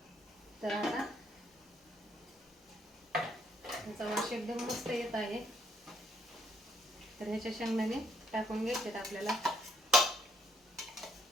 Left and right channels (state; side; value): normal; both; correlation 0.70